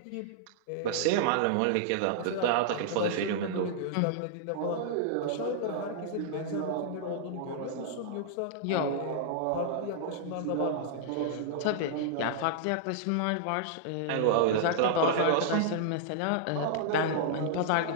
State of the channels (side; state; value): both; different; correlation -0.01